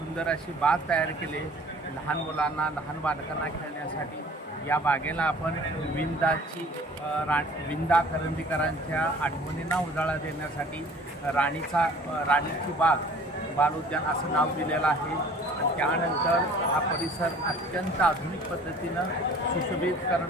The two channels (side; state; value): both; normal; correlation 0.49